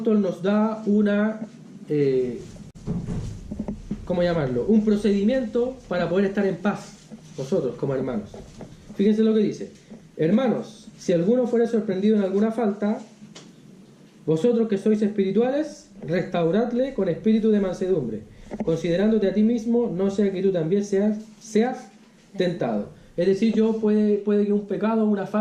nos da una, ¿cómo llamarlo? Un procedimiento para poder estar en paz nosotros como hermanos. Fíjense lo que dice: hermanos, si alguno fuera sorprendido en alguna falta, vosotros que sois espirituales, restauradle con espíritu de mansedumbre, considerándote a ti mismo, no sea que tú también seas tentado. Es decir, puede que un pecado o una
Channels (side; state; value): both; identical; correlation 1.00